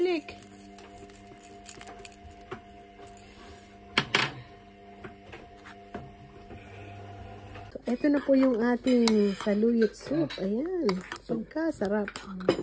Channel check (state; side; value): identical; both; correlation 1.00